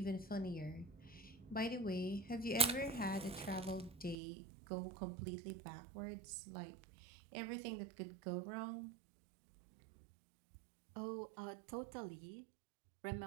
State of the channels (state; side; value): drops out; left; at 4.2 s